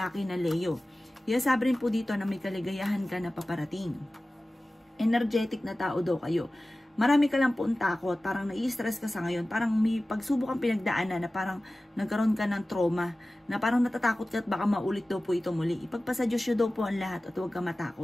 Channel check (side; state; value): both; normal; correlation 0.96